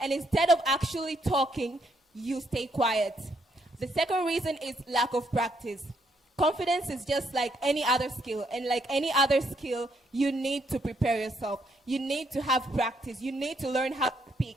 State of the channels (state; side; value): normal; both; correlation 0.73